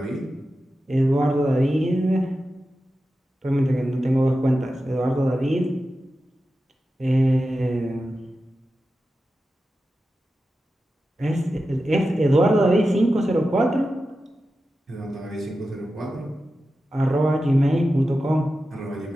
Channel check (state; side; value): normal; both; correlation 0.92